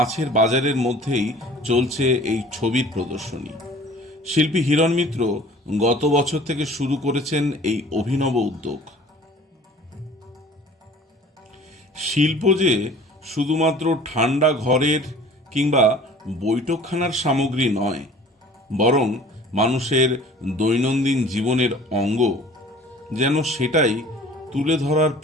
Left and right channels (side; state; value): both; normal; correlation 0.48